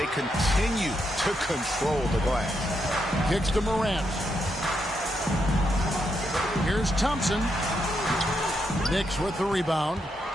continue to control the glass. Kicks to Morant. Here's Thompson. Knicks with the rebound.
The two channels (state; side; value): normal; both; correlation 0.81